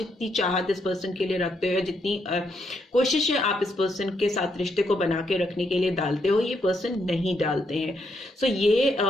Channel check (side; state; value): both; normal; correlation 0.77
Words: चाहत इस पर्सन के लिए रखते हो, जितनी कोशिशें आप इस पर्सन के साथ रिश्ते को बना के रखने के लिए डालते हो, ये पर्सन नहीं डालते हैं। सो